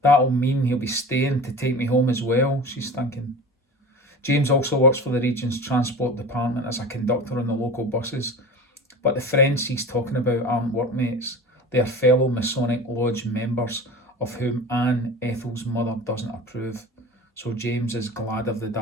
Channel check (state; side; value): normal; both; correlation 0.35